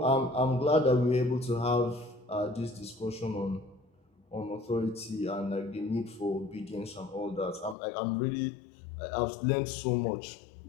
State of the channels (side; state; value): right; drops out; at 7.8 s